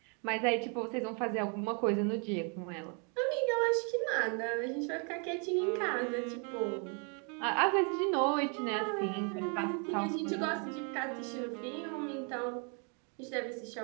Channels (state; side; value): quieter; left; 37.4 dB